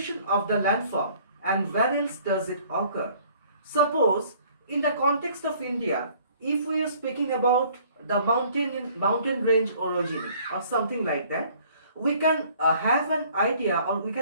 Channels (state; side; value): inverted; both; correlation -0.57